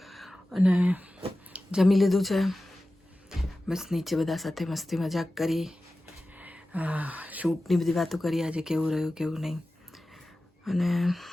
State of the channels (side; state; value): both; normal; correlation 0.95